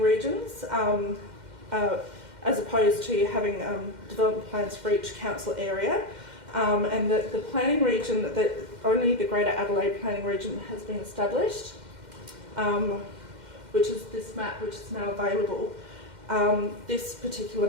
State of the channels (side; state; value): left; late; 2.1 ms